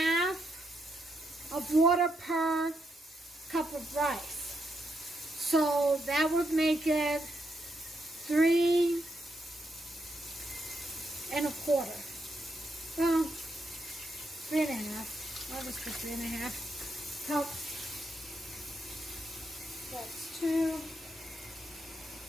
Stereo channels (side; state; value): both; normal; correlation 0.80